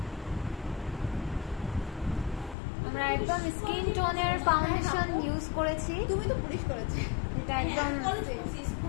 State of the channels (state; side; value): drops out; right; at 2.6 s